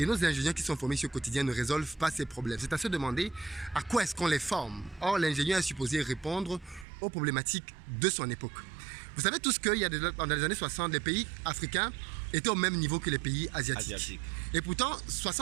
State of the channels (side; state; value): left; drops out; at 6.9 s